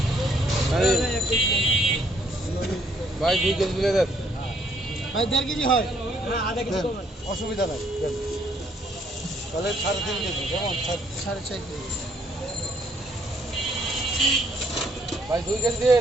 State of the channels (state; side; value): normal; both; correlation 0.67